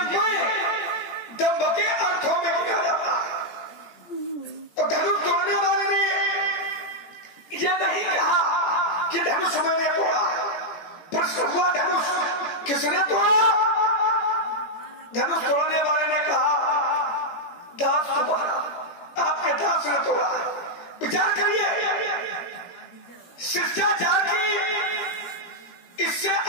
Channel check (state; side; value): late; right; 18 ms